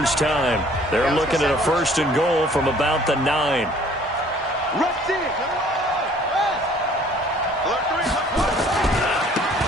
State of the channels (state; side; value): normal; both; correlation 0.55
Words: time. They're looking at a 1st and goal from about the 9.